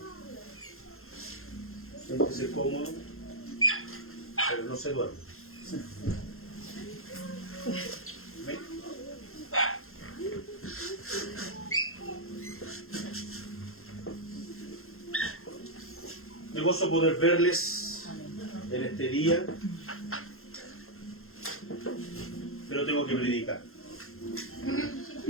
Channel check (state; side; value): late; right; 0.62 ms